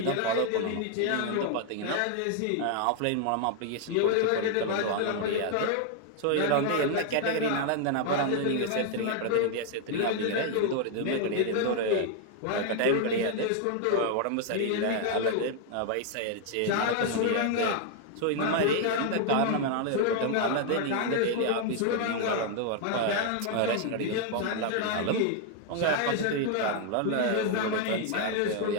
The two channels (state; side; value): different; both; correlation 0.00